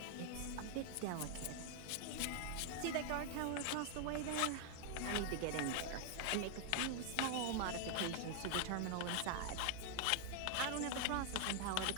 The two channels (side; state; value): both; different; correlation 0.00